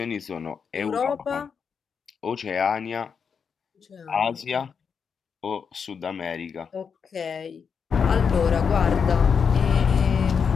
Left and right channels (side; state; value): right; quieter; 6.3 dB